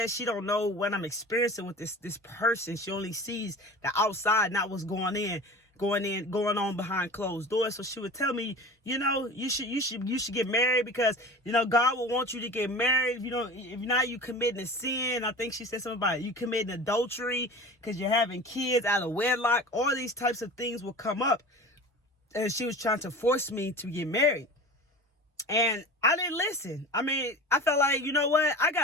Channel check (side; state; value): both; normal; correlation 0.36